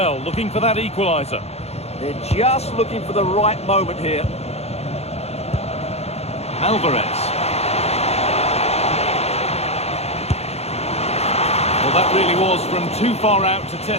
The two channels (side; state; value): right; late; 0.30 ms